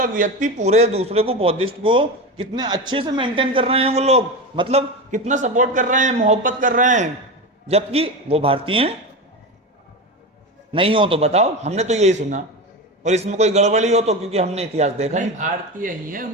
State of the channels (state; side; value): normal; both; correlation 0.21